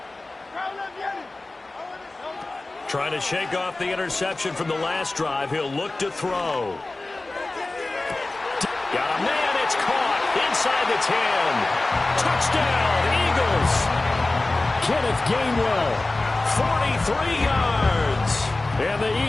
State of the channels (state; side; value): quieter; right; 3.0 dB